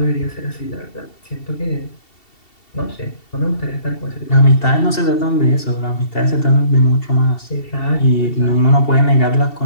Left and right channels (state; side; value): late; right; 2.7 ms